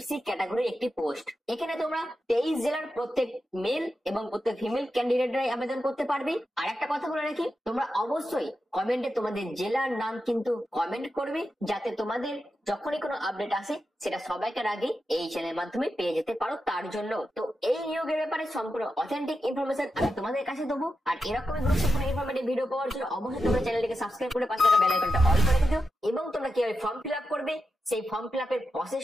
সি ক্যাটাগরির একটি পোস্ট। এখানে তোমরা 23 জেলার প্রত্যেক মেল এবং প্রত্যেক ফিমেল ক্যান্ডিডেটরাই আবেদন করতে পারবে। আর একটা কথা বলে রাখি, তোমরা অবশ্যই কমেন্টে তোমাদের জেলার নাম কিন্তু কমেন্ট করবে, যাতে তোমাদের যখনই কোনো আপডেট আসে সেটা সবাইকার আগে এই চ্যানেলের মাধ্যমে পেয়ে যেতে পারো। তার জন্য তো এই নিয়োগের ব্যাপারে সম্পূর্ণ অথেন্টিক ইনফরমেশন আমি তোমাদের কাছে দেবো। আর এরকমই গুরুত্বপূর্ণ ইনফরমেটিভ ভিডিও পাওয়ার জন্য অবশ্যই তোমরা চ্যানেলটিকে সাবস্ক্রাইব করে পাশে থাকা বেল আইকনটা অল করে দিও। এবং তোমরা কিভাবে ফর্ম ফিল আপ করবে সেই ফর্ম ফিল আপের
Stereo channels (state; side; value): normal; both; correlation 0.89